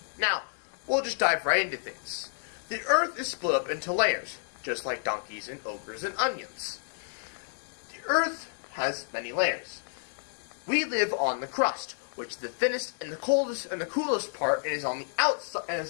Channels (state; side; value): silent; right; digital silence